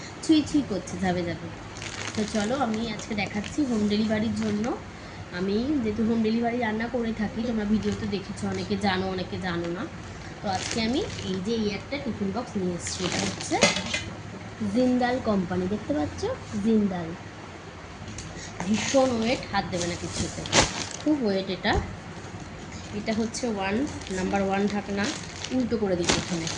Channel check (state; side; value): identical; both; correlation 1.00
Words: ছুঁই ছুঁই করছে, যাবে যাবে। তো চলো, আমি আজকে দেখাচ্ছি হোম ডেলিভারির জন্য। আমি যেহেতু হোম ডেলিভারি রান্না করে থাকি, তোমরা ভিডিওতে দেখেছো, অনেকে জানো অনেকে জানো না। তো আজকে আমি এই একটা টিফিন বক্স নিয়ে এসেছি। এটা হচ্ছে জিন্দাল কোম্পানি, দেখতে পাচ্ছ? জিন্দাল। ভীষণ ওয়েট, হাত দেবে না কিছুতে, খুব ওয়েট এটা। এটা হচ্ছে নাম্বার 1 ঢাকনা। উল্টো করে দিই প্রথমে,